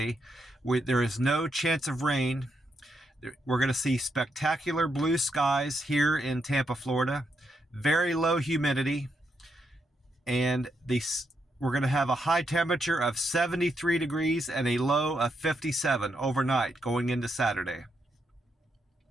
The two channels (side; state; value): both; normal; correlation 0.80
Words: there is no chance of rain. We're going to see spectacular blue skies here in Tampa, Florida, very low humidity, and we're going to have a high temperature of 73 degrees and a low of 57 overnight going into Saturday.